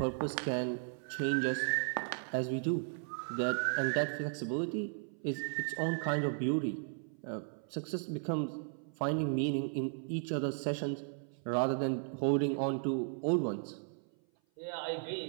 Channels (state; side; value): silent; left; 54 dB below the other